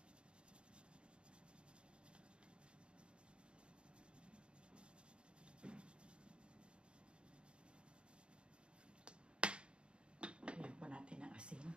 Lagyan po natin ng asin.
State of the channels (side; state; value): left; late; 0.055 ms